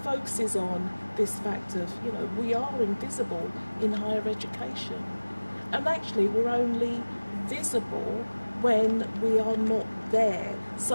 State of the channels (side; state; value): both; inverted; correlation -1.00